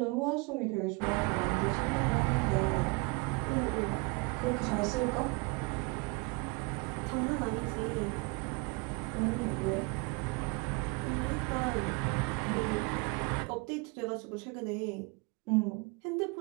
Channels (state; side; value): quieter; left; 29.2 dB